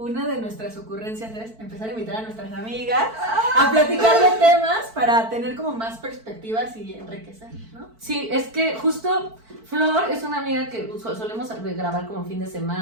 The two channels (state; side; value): late; left; 4.5 ms